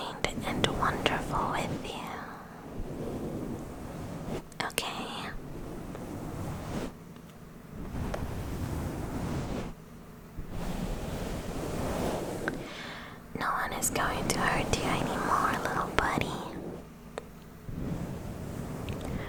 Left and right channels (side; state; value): both; identical; correlation 1.00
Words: and wonderful with you. Okay? No one is going to hurt you anymore, little buddy.